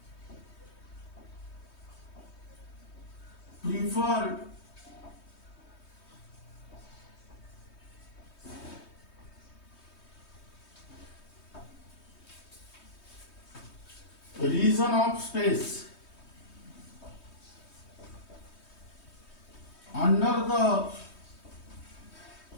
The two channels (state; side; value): late; right; 3.2 ms